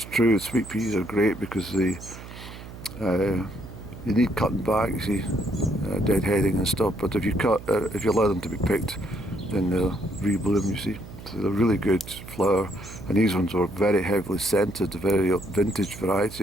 true, sweet peas are great because they you need cutting back, you see, deadheading and stuff, but if you allow them to be picked, then they'll rebloom, you see. So they're really good flower, and these ones were very heavily scented, a very vintage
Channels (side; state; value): right; noise; hum, 14 dB below the sound